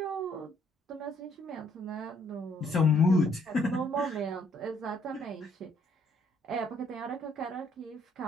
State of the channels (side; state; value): both; normal; correlation 0.66